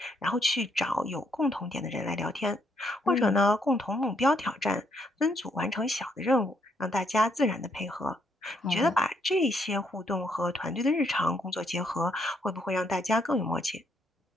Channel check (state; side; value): normal; both; correlation 0.73